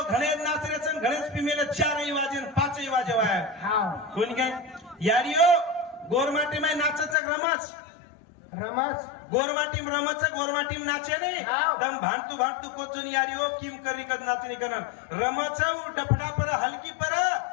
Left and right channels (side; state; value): right; drops out; at 7.2 s